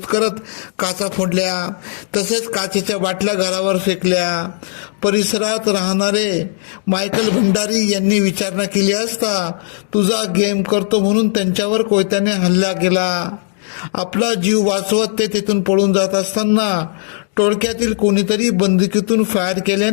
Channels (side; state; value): right; silent; digital silence